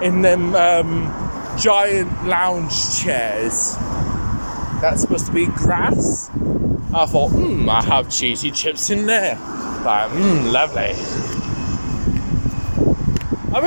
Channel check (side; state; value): both; inverted; correlation -1.00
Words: in them giant lounge chairs. That's supposed to be grass. I thought, I have cheesy chips in there. Like, lovely. I've